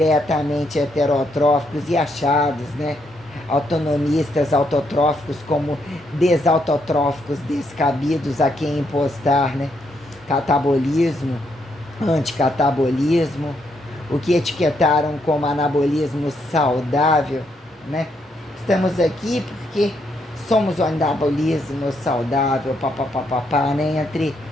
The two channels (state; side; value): normal; both; correlation 0.76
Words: heterotróficos e achados, né, autonomistas, autotróficos como desautotróficos, descabidos a quem impostar, né, catabolismo, anticatabolismo, o que etiquetaram como anabolismo saudável, né? Estamos aqui porque somos o anabolismo saudável, papapá, né? Entre